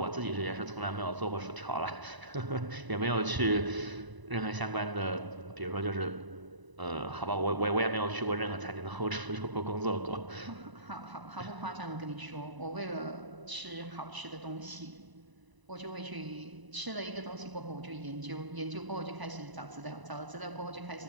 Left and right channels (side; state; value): left; late; 1.0 ms